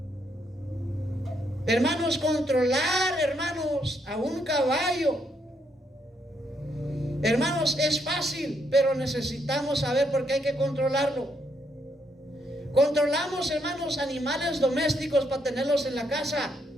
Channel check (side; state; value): both; normal; correlation 0.75